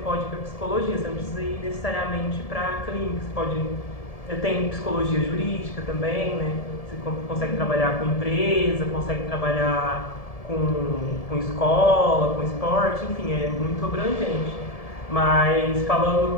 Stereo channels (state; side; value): late; right; 1.7 ms